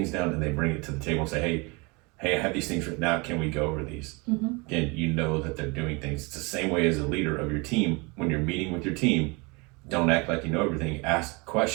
down, and they bring it to the table and say, hey, I have these things written out. Can we go over these? Again, you know that they're doing things. It's the same way as a leader of your team. When you're meeting with your team, don't act like you know everything. Ask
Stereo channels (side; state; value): left; quieter; 28.2 dB